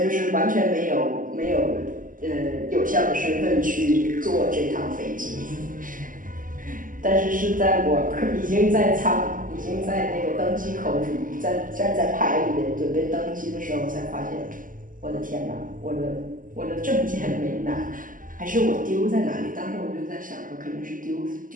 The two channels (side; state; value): left; late; 0.39 ms